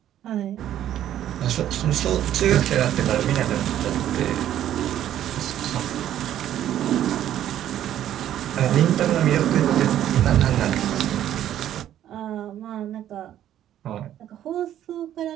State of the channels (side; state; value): left; quieter; 11.5 dB